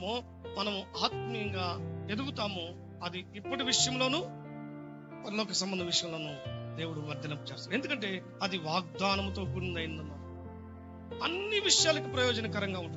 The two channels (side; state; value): both; identical; correlation 1.00